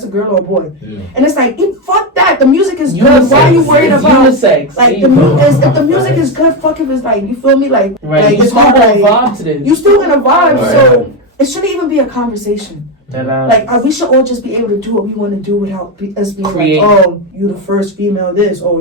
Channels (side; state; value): both; normal; correlation 0.09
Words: a girl or a boy, and it's like fuck that. The music is good. Why are you worried about unisex? Like if the music is good, fuck if it's like you feel me like you it's still hard, gonna vibe to this. You still gonna vibe, so it shouldn't even be a conversation. Like we should all just be able to do what we want to do without us being like, oh, you the first female this, or